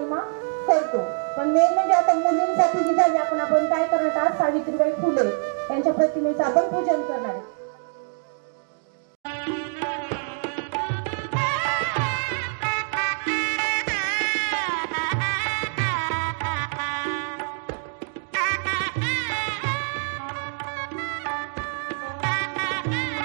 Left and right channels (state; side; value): silent; left; 59 dB below the other